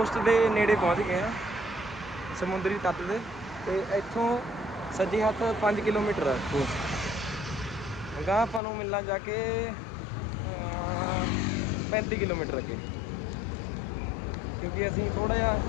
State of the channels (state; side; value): drops out; right; at 8.6 s